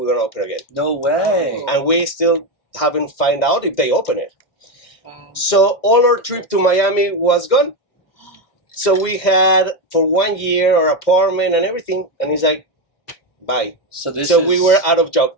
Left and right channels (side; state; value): right; late; 2.1 ms